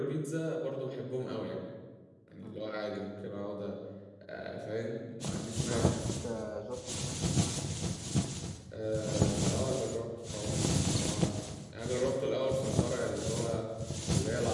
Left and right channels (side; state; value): both; identical; correlation 1.00